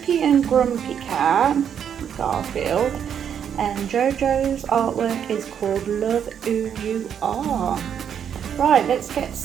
and Grumpy Cat, Garfield. And JoJo's artwork is called Love Who You Are. Right, let's get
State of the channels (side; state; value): left; quieter; 8.4 dB